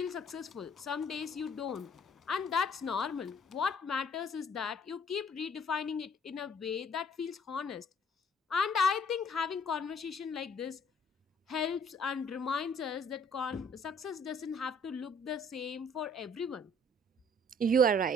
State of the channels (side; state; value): both; normal; correlation 0.59